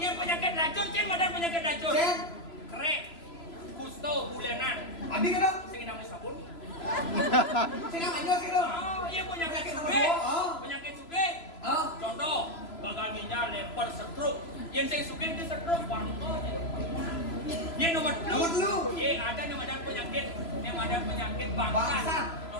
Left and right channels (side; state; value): right; late; 3.0 ms